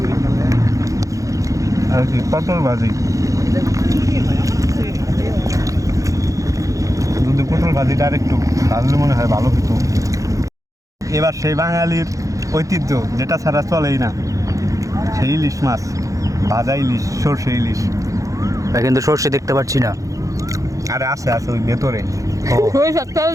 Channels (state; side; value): late; left; 0.16 ms